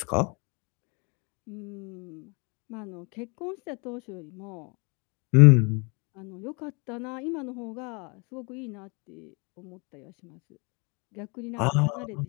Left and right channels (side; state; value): right; quieter; 31.8 dB